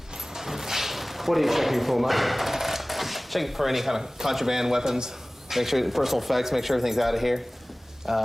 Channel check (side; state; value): both; normal; correlation 0.98